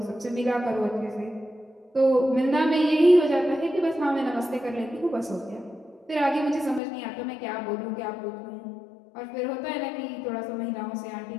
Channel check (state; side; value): drops out; right; at 6.8 s